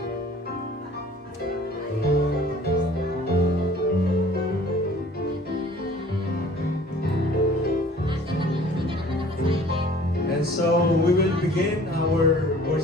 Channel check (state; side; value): normal; both; correlation 0.50